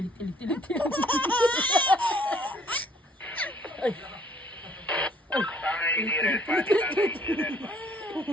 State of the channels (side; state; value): both; normal; correlation 0.61